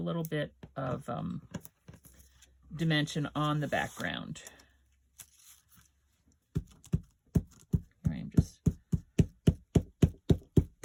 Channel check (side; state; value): both; identical; correlation 1.00